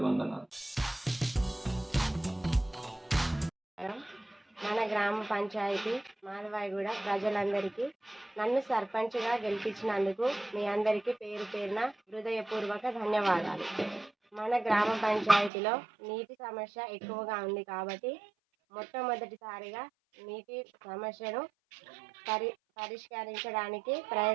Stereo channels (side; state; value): left; drops out; at 15.5 s